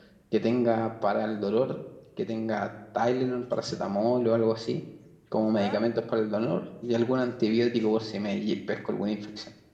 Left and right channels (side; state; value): both; identical; correlation 1.00